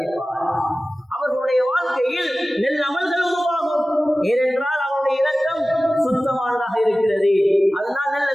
அவர்களுடைய வாழ்க்கையில் நெல் அமல்கள் உருவாகும். ஏனென்றால் அவருடைய இரக்கம் சுத்தமானதாக இருக்கிறது. அதனால் நல்ல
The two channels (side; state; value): both; normal; correlation 0.96